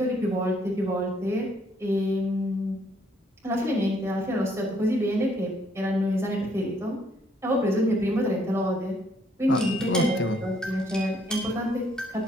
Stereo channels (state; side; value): normal; both; correlation 0.68